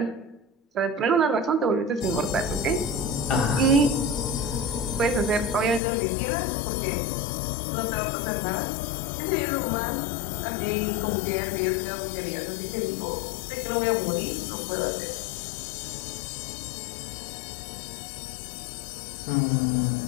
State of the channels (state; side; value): drops out; right; at 5.8 s